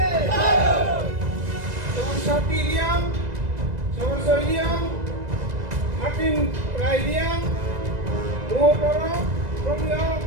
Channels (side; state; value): left; late; 2.0 ms